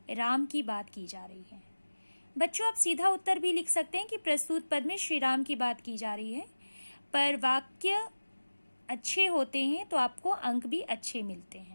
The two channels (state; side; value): inverted; both; correlation -1.00